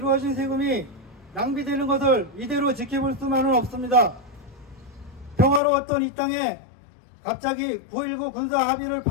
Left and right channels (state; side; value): drops out; right; at 5.6 s